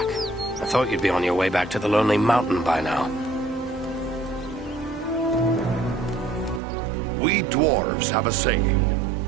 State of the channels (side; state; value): left; drops out; at 6.6 s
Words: I thought you'd be on your way back to the Lonely Mountain by now. We dwarves have a saying.